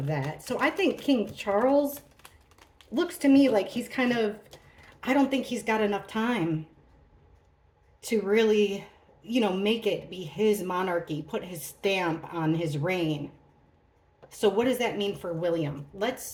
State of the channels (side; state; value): both; identical; correlation 1.00